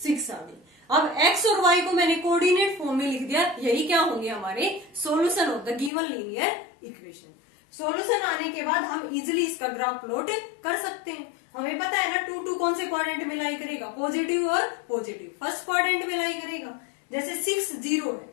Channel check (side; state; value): right; drops out; at 5.9 s